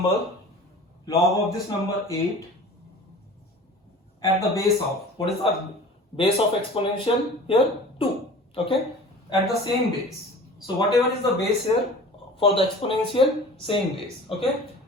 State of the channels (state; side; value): normal; both; correlation 0.42